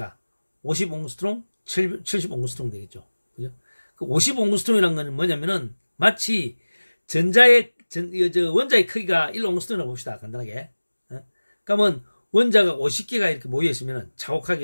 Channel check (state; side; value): inverted; both; correlation -1.00